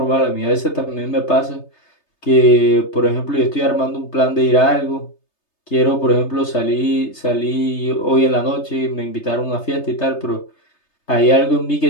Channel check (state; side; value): late; right; 3.3 ms